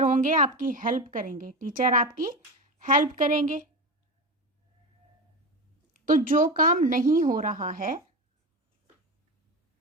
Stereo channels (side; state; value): both; normal; correlation 0.22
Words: होंगे आपकी हेल्प करेंगे, टीचर आपकी हेल्प करेंगे। तो जो काम नहीं हो रहा है,